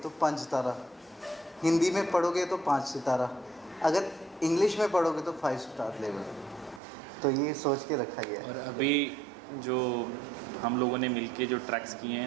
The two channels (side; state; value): left; drops out; at 6.8 s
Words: तो 5 तारा, हिंदी में पढ़ोगे तो 5 सितारा, अगर इंग्लिश में पढ़ोगे तो 5 स्टार लेवल। तो ये सोच के रखा गया है। और अभी जो हम लोगों ने मिलके जो ट्रैक्स किए